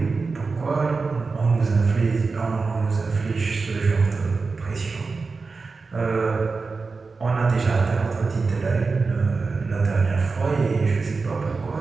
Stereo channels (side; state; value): left; quieter; 4.3 dB